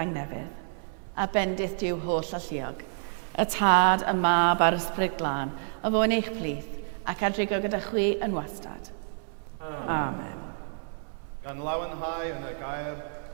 a bendith diw holl alluog, y tad, y mab a'r ysbryd glân, a fo yn eich plith, ac adrigo gyda chwi yn wastad. Amen. Gan lawenhau yn y gair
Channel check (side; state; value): left; silent; 59 dB below the other